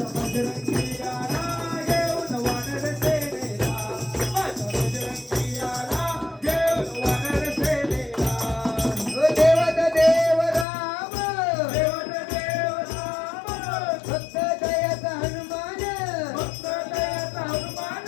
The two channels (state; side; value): drops out; right; at 10.7 s